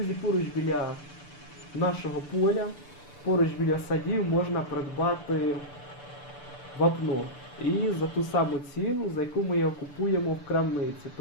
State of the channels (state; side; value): late; right; 6.8 ms